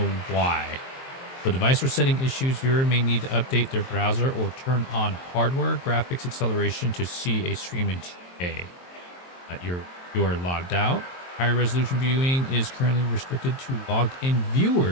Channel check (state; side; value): late; right; 23 ms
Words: why. For device or setting issues, viewer may need to update their browser or turn on hardware graphics acceleration to see a stream in 2K. You are logged out. Higher resolution viewing is currently restricted to logged in